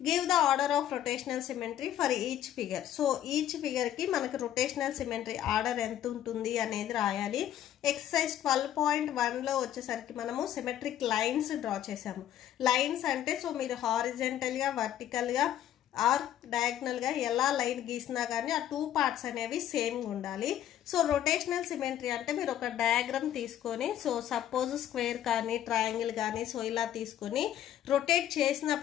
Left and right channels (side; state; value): right; quieter; 11.4 dB